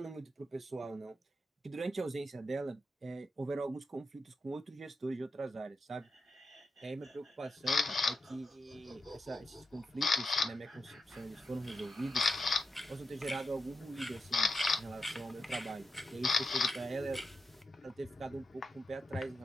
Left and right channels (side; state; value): both; normal; correlation 0.88